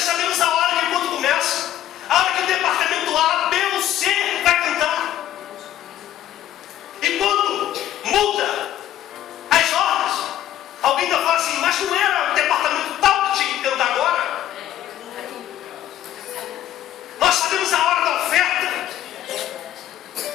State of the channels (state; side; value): quieter; right; 12.3 dB